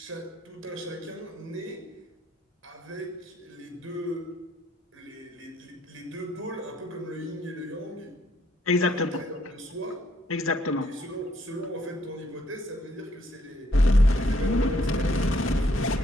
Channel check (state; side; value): normal; both; correlation 0.68